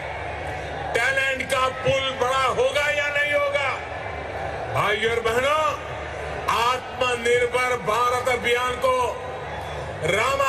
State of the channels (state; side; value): identical; both; correlation 1.00